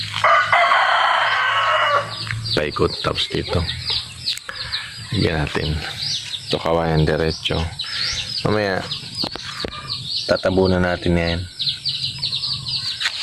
Paikot tapos dito. Lagyan natin. Ito kawayan diretso. Mamaya tatabunan natin yan.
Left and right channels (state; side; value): identical; both; correlation 1.00